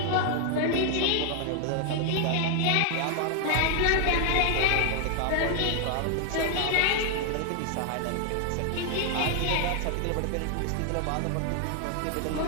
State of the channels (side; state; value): both; different; correlation 0.00